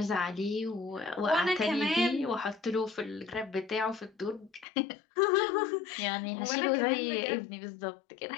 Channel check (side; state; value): right; drops out; at 4.7 s